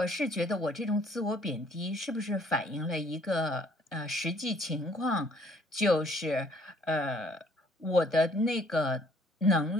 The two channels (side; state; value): both; normal; correlation 0.61